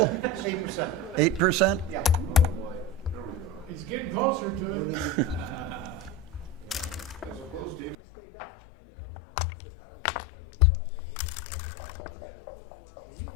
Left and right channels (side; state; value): right; drops out; at 8.0 s